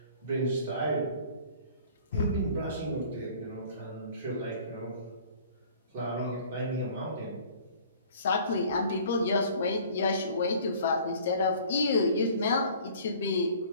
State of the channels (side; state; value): both; inverted; correlation -0.50